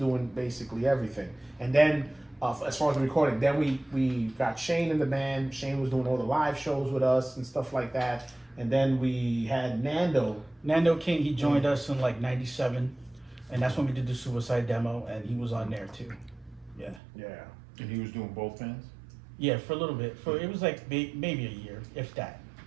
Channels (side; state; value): left; drops out; at 17.0 s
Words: basically everything. And then, as far as the recording, then we got Shane in the band. Shane was doing all the live shows with us and stuff like that. And then we had Nando King. He joined us in like 97, and that's when we did the Suicide demo, and he was on there too. Yeah. And he was doing both bands? Yeah, for a little bit. It was like maybe a year, if that.